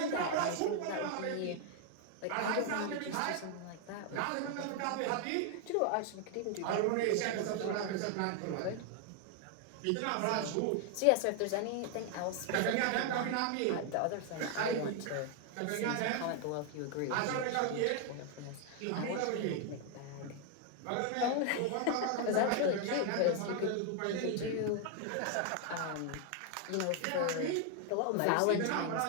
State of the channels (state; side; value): different; both; correlation 0.00